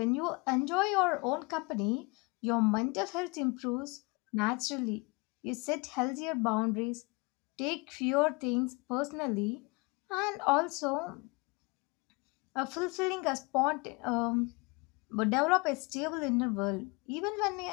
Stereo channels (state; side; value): quieter; right; 28.3 dB